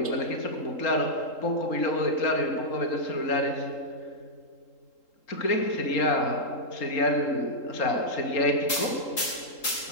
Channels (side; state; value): right; late; 3.8 ms